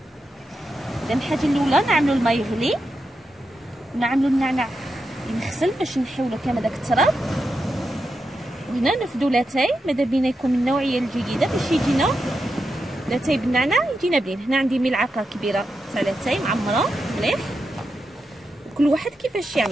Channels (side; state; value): both; normal; correlation 0.87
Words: اذا الحاجه الاولى نعملوا الماء يغلي ونعملوا النعناع ينغسل باش نحيولو كامل داك التراب. وهنا نفدو لاتاي ماذا بينا يكون من النوعيه الجيده باش يجينا لاتاي بالنعناع يجينا بنين. هنا عندي ملعقه كبيره تاع لاتاي معمره مليح. كل واحد كيفاش